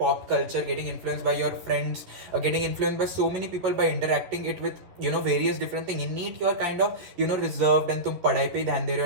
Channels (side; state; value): left; late; 11 ms